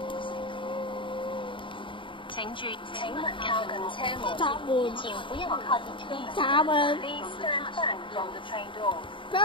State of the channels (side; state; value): right; late; 0.24 ms